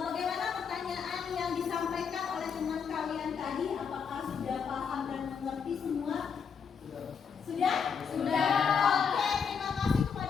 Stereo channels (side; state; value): right; quieter; 6.5 dB